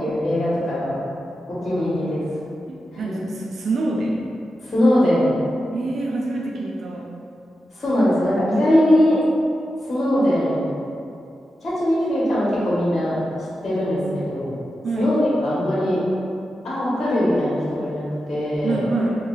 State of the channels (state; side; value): normal; both; correlation 0.90